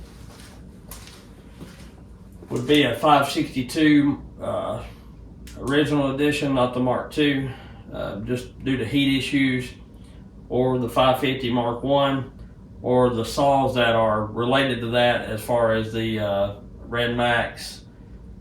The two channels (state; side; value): identical; both; correlation 1.00